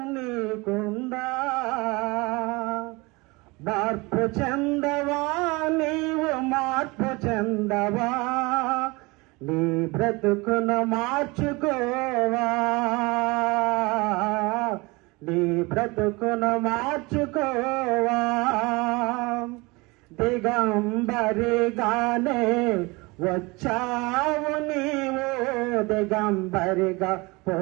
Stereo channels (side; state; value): left; quieter; 24.8 dB